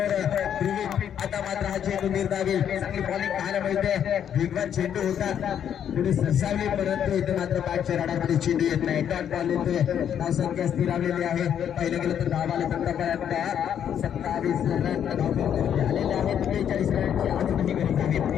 ध्रुवी आता मात्र हा चेंडू निर्धावी चांगली बॉलिंग पाहायला मिळते. वेगवान चेंडू होता, पुढे सरसावली, परंतु इथे मात्र बॅटच्या राडामध्ये चेंडू येत नाही. डॉट बॉल येतोय, धावसंख्या स्थिरावलेली आहे. पहिलं गेलं तर धाव आले आतापर्यंत 27 रन धाव आलेले आहेत. 43 रनची आजही गरज आहे.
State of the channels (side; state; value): right; quieter; 9.1 dB